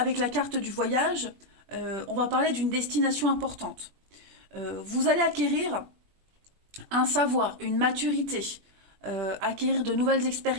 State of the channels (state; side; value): late; left; 20 ms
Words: la carte du voyage, on va parler d'une destination importante. Vous allez acquérir un savoir, une maturité, acquérir de nouvelles